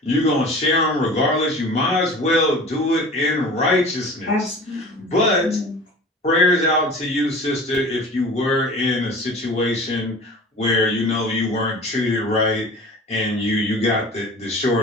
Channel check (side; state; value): both; normal; correlation 0.40